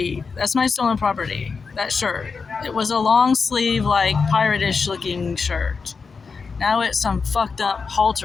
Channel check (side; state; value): right; quieter; 5.0 dB